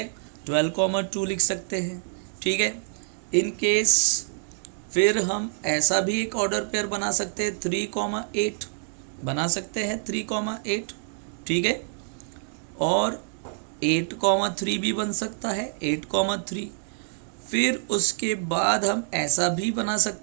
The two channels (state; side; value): silent; left; digital silence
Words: 12, 2 लिख सकते हैं, ठीक है। इन केस फिर हम ऐसा भी एक ऑर्डर पेयर बना सकते हैं 3, 8 बना सकते हैं 3, 8, ठीक है। और 8, 3 भी बन सकता है 8, 3। फिर उसके बाद हम ऐसा भी बना